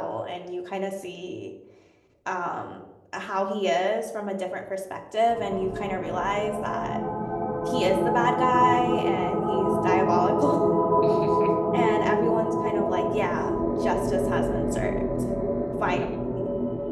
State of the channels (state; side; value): identical; both; correlation 1.00